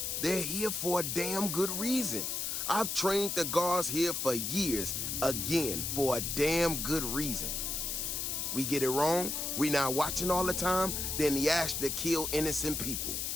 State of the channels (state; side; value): noise; left; hiss, 2 dB below the sound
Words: they're here for a damn good reason. I've trained the guards here for years, again, for a damn good reason. We get it wrong, we not watching all the time, then the Ashta kill innocent people.